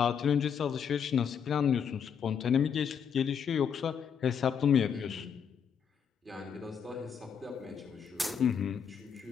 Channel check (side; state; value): right; quieter; 7.3 dB